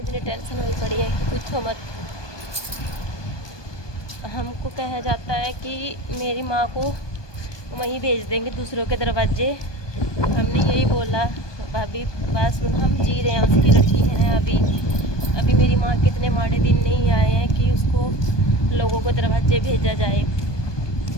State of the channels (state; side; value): late; right; 1.2 ms